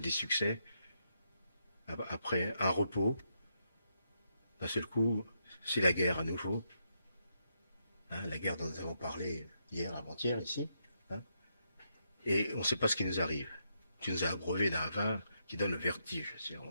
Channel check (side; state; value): both; inverted; correlation -0.80